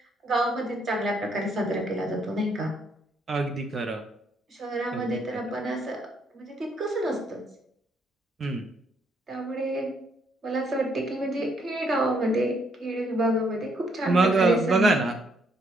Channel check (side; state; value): both; normal; correlation 0.71